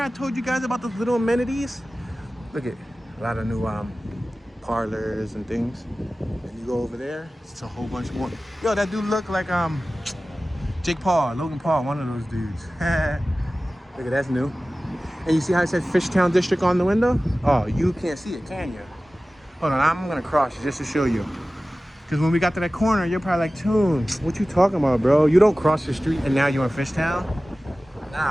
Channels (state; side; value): normal; both; correlation 0.96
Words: I told you guys about those little amenities? Look at a lot of new parlors and things. And you go over there, it's a whole bunch more. Yo, that dude look like Logan Paul, one of those dudes. Look at that's new. And you see how it says Fishtown District on the window? Oh, you can't see it, can you? Hold on, I'm gonna cross it just to show you. Because when we got to that corner, you're probably like, Toon, what you talking about, bro? You don't cross the street and now you're in Fishtown?